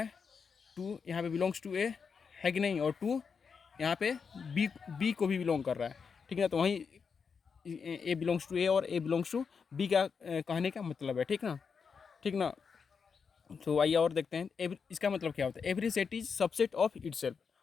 2 यहाँ पे बिलोंग्स टू ए है कि नहीं? और 2 यहाँ पे बी को भी बिलोंग कर रहा है, ठीक है ना? तो वहीं ए बिलोंग्स टू ए और ए बिलोंग्स टू बी का कहने का मतलब है, ठीक ना? ठीक ना? तो आइए और देखते हैं इसका मतलब क्या होता है। Every set is subset of itself.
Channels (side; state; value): right; quieter; 5.9 dB